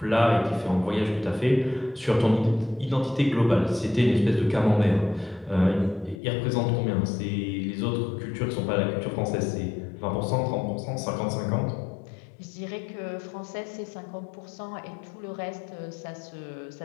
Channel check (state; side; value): drops out; right; at 6.2 s